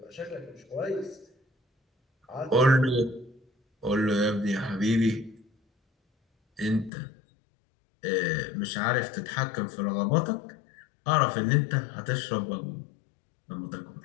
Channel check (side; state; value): right; drops out; at 6.9 s